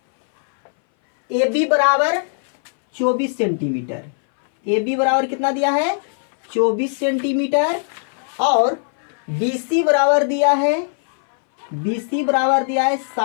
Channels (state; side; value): silent; right; 62 dB below the other